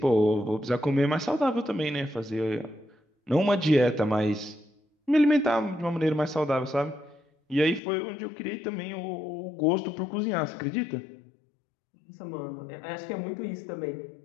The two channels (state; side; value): drops out; right; at 7.8 s